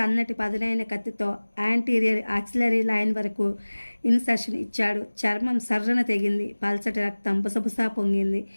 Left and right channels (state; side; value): inverted; both; correlation -1.00